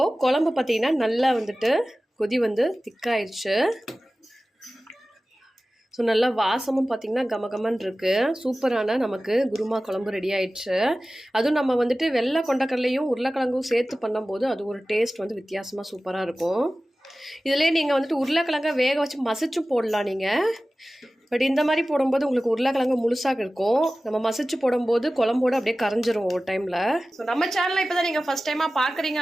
குழம்பு பார்த்தீங்கன்னா நல்லா வந்துட்டு கொதி வந்து திக்காயிடுச்சு. ஸோ நல்லா வாசமும் பார்த்திங்கன்னா கமகமன்னு இருக்குது. சூப்பரான நமக்கு குருமா குழம்பு ரெடி ஆயிடுச்சு. அதுவும் நம்ம வந்துட்டு வெள்ளை கொண்டக்கடலையும் உருளைக்கிழங்கும் சேர்த்து பண்ணும்போது அது ஒரு டேஸ்ட் வந்து வித்தியாசமாக சூப்பராக இருக்கும். இதிலே நீங்கள் வந்துட்டு உருளைக்கிழங்க வேக வச்சு மசிச்சும் போடலாம். நீங்கள் பட் இந்த மாதிரி போடும்போது உங்களுக்கு உருளைக்கிழங்கு முழுசாக இருக்கும். நம்ம மசிச்சு போடும்போது குழம்போடு அப்படியே கரைஞ்சிரும் ஒரு டைமில். ஸோ நம்ம சேனலை இப்போ தான் நீங்கள் ஃபஸ்ட் டைமாக பார்க்குறீங்க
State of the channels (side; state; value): both; normal; correlation 0.96